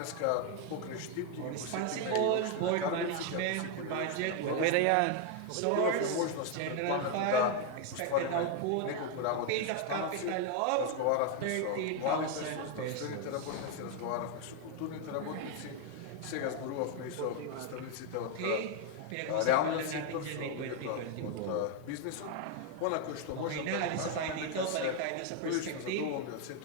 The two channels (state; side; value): different; both; correlation 0.01